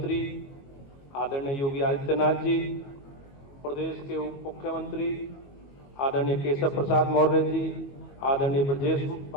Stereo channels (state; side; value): late; right; 22 ms